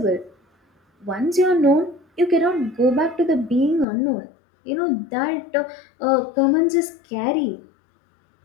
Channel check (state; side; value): drops out; right; at 3.9 s